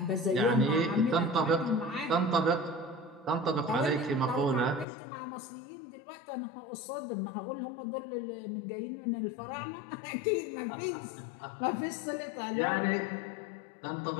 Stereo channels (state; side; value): drops out; right; at 4.9 s